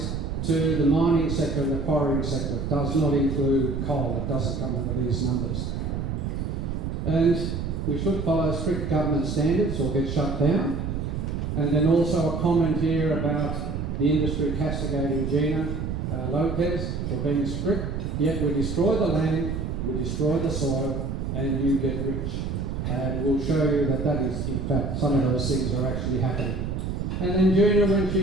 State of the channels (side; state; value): right; noise; rumble, 3 dB below the sound